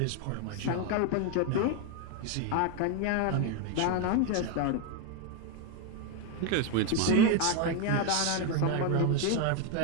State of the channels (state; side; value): different; both; correlation 0.01